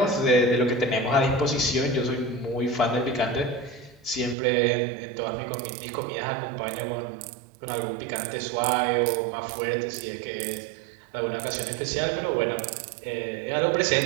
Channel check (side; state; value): left; drops out; at 4.4 s